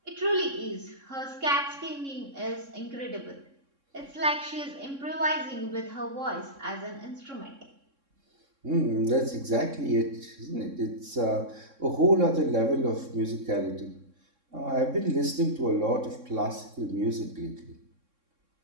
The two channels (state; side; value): late; left; 3.6 ms